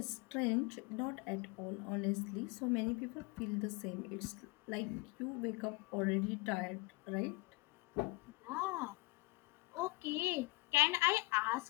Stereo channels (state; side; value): quieter; right; 22.9 dB